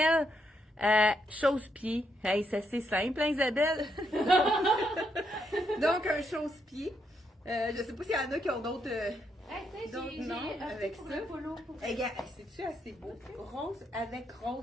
Chausse-pied. Hey, ça c'est simple, hein, Isabelle? Donc, un chausse-pied. Je sais pas s'il y en a qui ont d'autres. Donc, non, avec ça. Regarde, c'est-tu assez beau? Rose avec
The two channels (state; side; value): normal; both; correlation 0.78